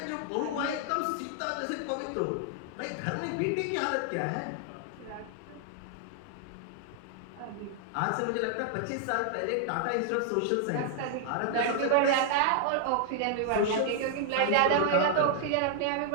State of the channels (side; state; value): both; different; correlation 0.00